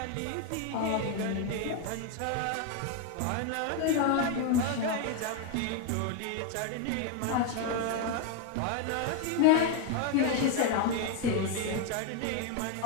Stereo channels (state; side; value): different; both; correlation 0.01